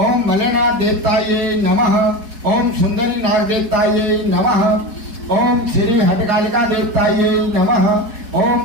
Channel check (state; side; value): late; left; 4.4 ms